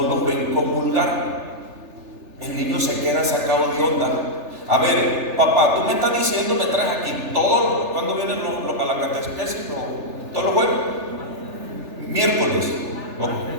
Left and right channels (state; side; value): late; left; 3.4 ms